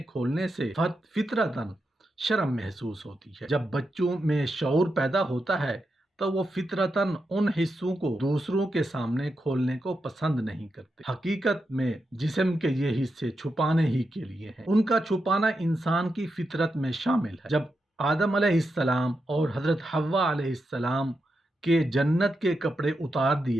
کھولنے سے فطرتاً شرم محسوس ہوتی ہے۔ جب بچوں میں شعور پیدا ہوتا ہے تو وہ فطرتاً ان حصوں کو دوسروں کے سامنے کھولنے کو پسند نہیں کرتے۔ حقیقت میں جسم کے یہ حصے چھپانے ہی کے لیے ہیں۔ ان کا چھپانا انسان کی فطرت میں شامل ہے۔ جب آدم علیہ السلام اور حضرت حوا علیہ السلام کے جنت کے کپڑے اتار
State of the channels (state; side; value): normal; both; correlation 0.86